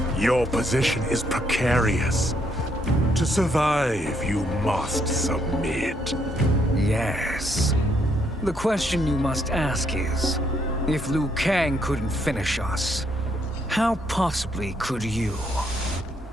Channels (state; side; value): normal; both; correlation 0.72